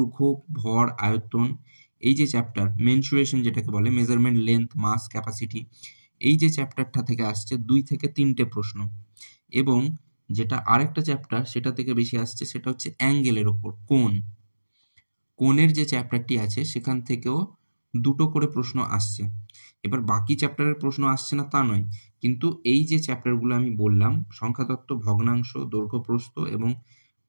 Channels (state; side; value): inverted; both; correlation -1.00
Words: ভর, আয়তন, এই যে চ্যাপ্টার, মেনসুরেশন যেটাকে বলে, মেজারমেন্ট, লেন্থ, মাস, ক্যাপাসিটি, এই যে চ্যাপ্টারটা থেকে আসছে 2 থেকে 3টে প্রশ্ন। এবং যেটা আরেকটা চ্যাপ্টার সেটা থেকে বেশি আসছে, সেটা হচ্ছে অ্যাঙ্গেলের ওপর, কোণের যে চ্যাপ্টারটি আছে সেখান থেকেও 2টো করে প্রশ্ন আসছে। এবার বাকি চ্যাপ্টারের প্রশ্ন আসছে না তা নয়, কিন্তু এই যে চ্যাপ্টারগুলো আমি বললাম, সংখ্যাতত্ত্ব, ভগ্নাংশ, দৈর্ঘ্য, প্রস্থ এবং